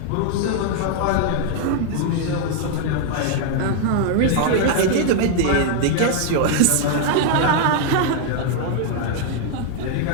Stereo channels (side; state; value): both; different; correlation 0.00